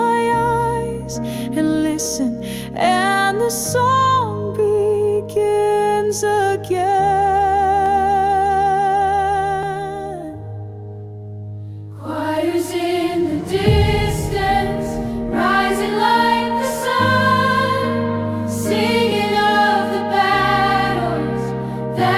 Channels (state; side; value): identical; both; correlation 1.00